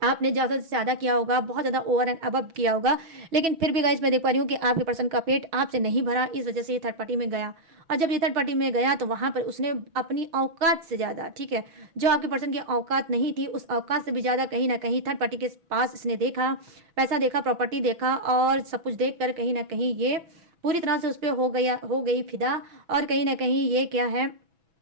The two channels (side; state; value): left; late; 6.1 ms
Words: आपने ज़्यादा से ज़्यादा किया होगा, बहुत ज़्यादा ओवर एंड अबव किया होगा, लेकिन फिर भी गाइस मैं देख पा रही हूँ कि आपके पर्सन का पेट आपसे नहीं भरा, इस वजह से ये थर्ड पार्टी में गया। और जब ये थर्ड पार्टी में गया तो वहाँ पर उसने अपनी औकात से ज़्यादा, ठीक है, जो आपके पर्सन की औकात नहीं थी उस औकात से भी ज़्यादा कहीं ना कहीं थर्ड पार्टी के पास इसने देखा, पैसा देखा, प्रॉपर्टी देखा और सब कुछ देख कर कहीं ना कहीं ये पूरी तरह से उस पर हो गई फिदा। और कहीं ना कहीं ये क्या है,